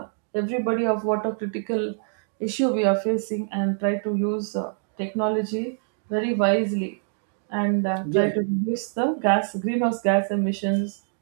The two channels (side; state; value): left; silent; digital silence